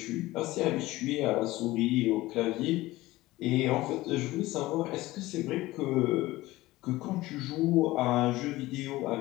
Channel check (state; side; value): quieter; right; 18.2 dB